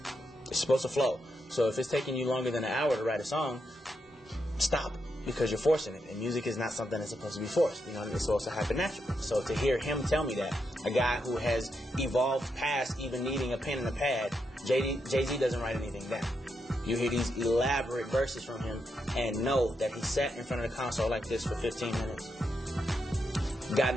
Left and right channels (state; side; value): normal; both; correlation 0.83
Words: It's supposed to flow. So if it's taking you longer than an hour to write a song, stop, because you're forcing it. And music is not something that's supposed to be forced. You know, it's supposed to happen naturally. So to hear him tell me that, a guy who has evolved past even needing a pen and a pad, Jay-Z doesn't write anything down. You hear these elaborate verses from him and know that he sat in front of the console like this for 15 minutes. Got in